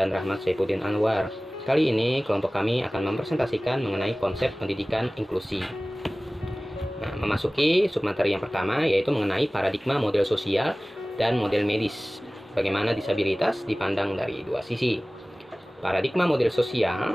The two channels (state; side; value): normal; both; correlation 0.98